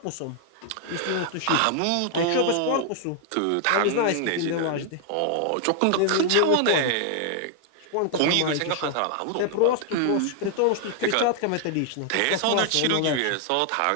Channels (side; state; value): both; different; correlation 0.00